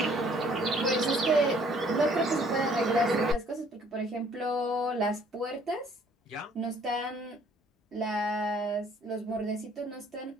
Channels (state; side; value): normal; both; correlation 0.60